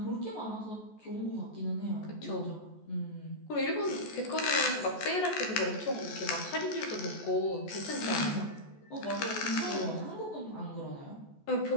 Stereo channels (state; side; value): late; right; 14 ms